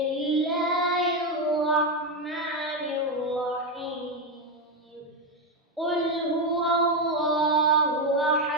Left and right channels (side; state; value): both; normal; correlation 0.08